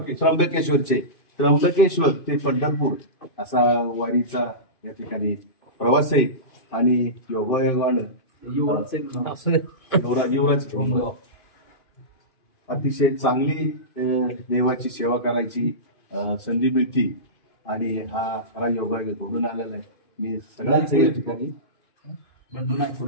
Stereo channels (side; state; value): right; late; 2.5 ms